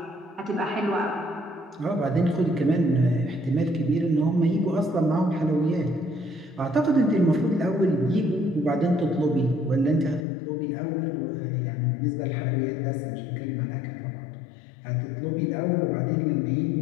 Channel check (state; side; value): drops out; right; at 10.2 s